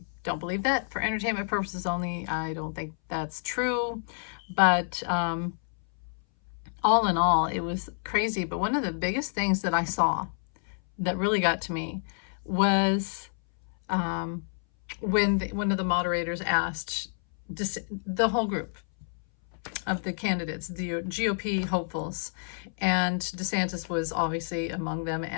don't believe that. For entertainment purposes only, I don't think that's true. But all in all, it was crazy. But one of the biggest things that I saw that really got to me was um, when one of the moderators asked the whole group of the candidates, the GOP hopefuls, and DeSantis was obviously among them.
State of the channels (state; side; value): silent; right; 59 dB below the other